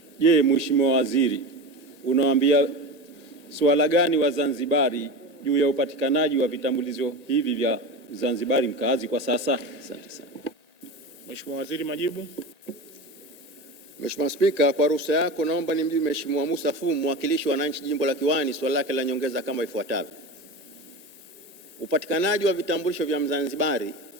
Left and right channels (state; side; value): late; left; 1.8 ms